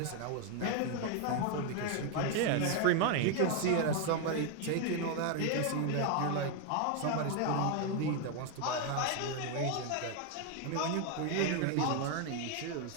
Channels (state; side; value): different; both; correlation 0.01